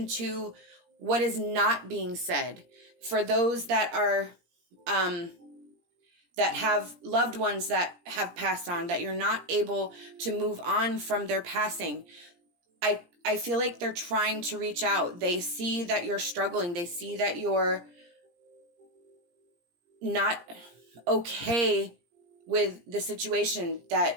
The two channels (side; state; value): left; late; 17 ms